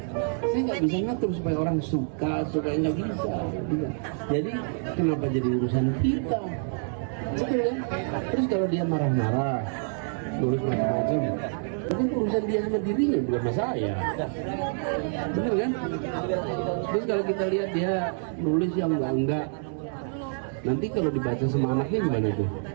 Saya nggak bisa ngatur supaya orang suka nggak bisa. Jadi kenapa jadi urusan kita? Betul kan? Terus kalau dia marah-marah, nulis macam-macam, itu urusan dia sama dirinya, bukan sama saya. Bener kan? Terus kalau kita lihat dia nulis yang enggak, nanti kalau dibaca sama anaknya gimana tuh?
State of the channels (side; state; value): left; silent; 60 dB below the other